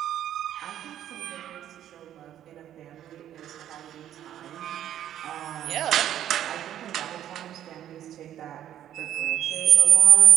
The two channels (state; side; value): quieter; left; 11.2 dB